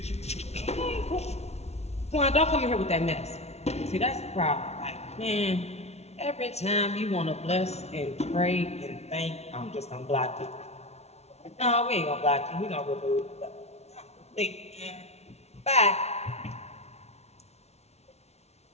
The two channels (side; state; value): right; late; 0.31 ms